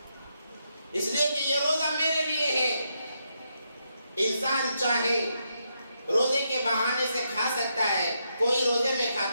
اس لیے کہ یہ روزہ میرے لیے ہے۔ انسان چاہے روزے کے بہانے سے کھا سکتا ہے، کوئی روزے میں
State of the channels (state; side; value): inverted; both; correlation -0.80